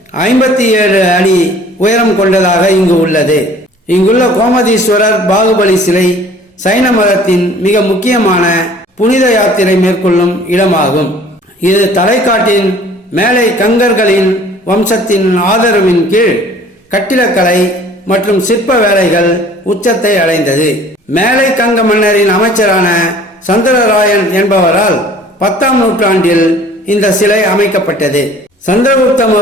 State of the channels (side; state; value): both; normal; correlation 0.51